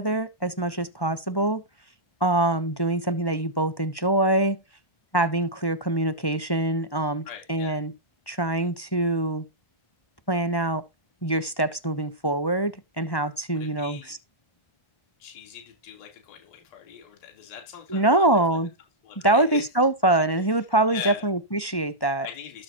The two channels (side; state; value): right; late; 1.1 ms